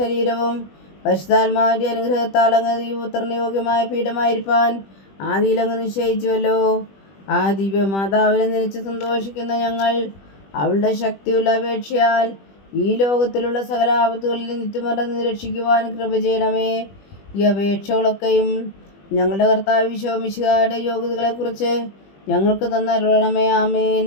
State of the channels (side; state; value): right; late; 20 ms